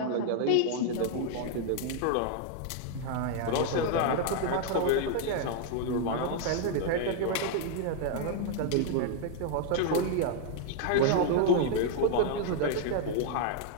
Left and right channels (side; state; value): both; different; correlation 0.00